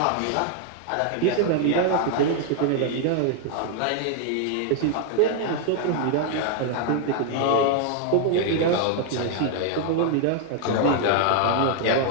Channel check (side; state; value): both; different; correlation 0.00